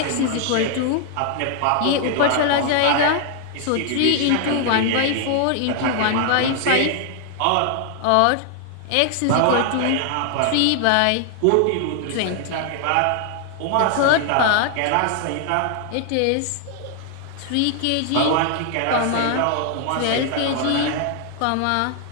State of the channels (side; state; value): both; different; correlation 0.00